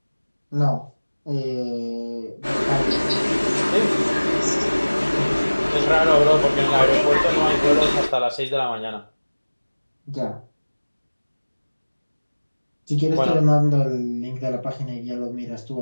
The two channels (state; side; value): inverted; both; correlation -1.00